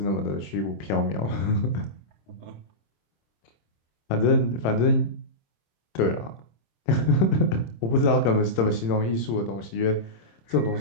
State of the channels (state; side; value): late; right; 26 ms